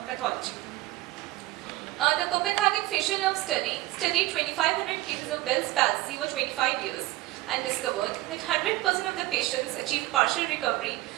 pathology. The Copenhagen facial nerve study studied 2,500 cases of Bell's palsy over 25 years and discovered that 100% of the patients achieved partial recovery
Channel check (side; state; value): left; quieter; 18.2 dB